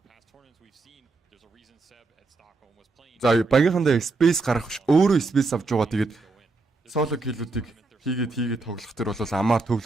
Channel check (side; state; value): left; quieter; 3.7 dB